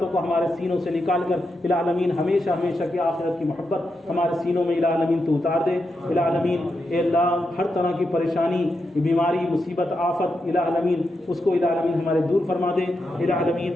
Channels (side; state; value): both; normal; correlation 0.86